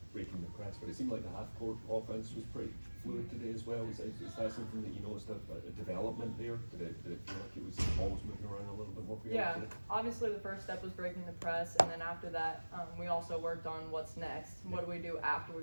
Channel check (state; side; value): inverted; both; correlation -1.00